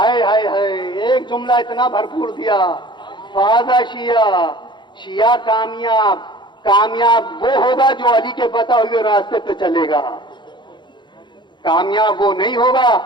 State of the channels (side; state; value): right; late; 0.22 ms